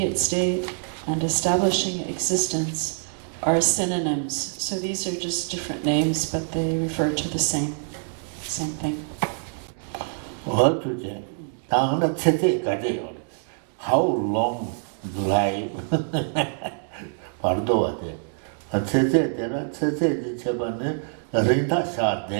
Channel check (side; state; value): left; silent; 62 dB below the other